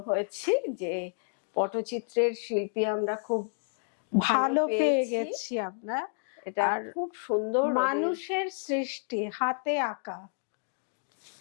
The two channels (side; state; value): right; silent; digital silence